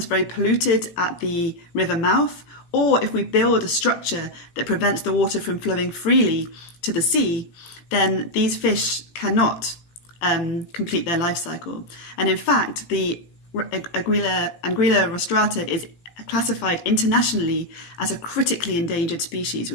very polluted at the river mouth, or if we build a structure that prevents the water from flowing freely to the sea, then these fish cannot complete their life cycle. And in fact, the Anguilla rostrata is classified internationally as a critically endangered species,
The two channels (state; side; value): late; right; 17 ms